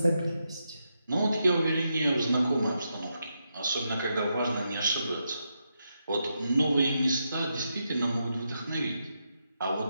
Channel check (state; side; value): inverted; both; correlation -0.83